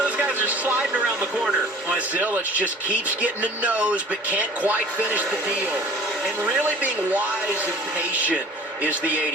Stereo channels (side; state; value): both; normal; correlation 0.47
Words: guys are sliding around the corner. Zilich just keeps getting a nose but can't quite finish the deal. And really being wise and patient is the